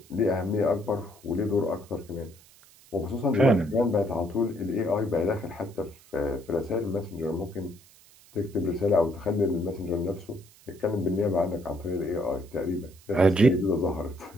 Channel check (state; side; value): noise; right; hiss, 26 dB below the sound